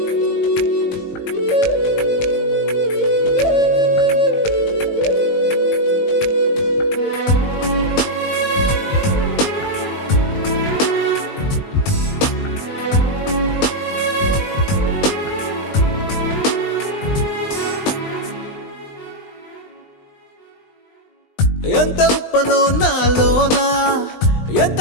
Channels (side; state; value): right; late; 20 ms